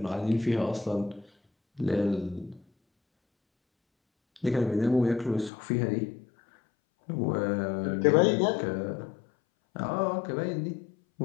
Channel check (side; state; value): right; drops out; at 5.5 s